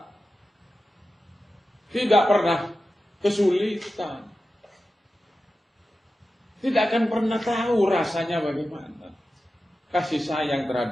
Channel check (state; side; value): normal; both; correlation 0.93